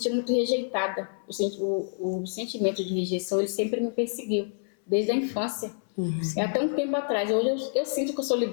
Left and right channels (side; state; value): right; silent; 60 dB below the other